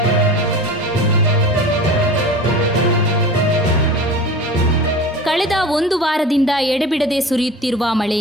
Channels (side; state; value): both; normal; correlation 0.35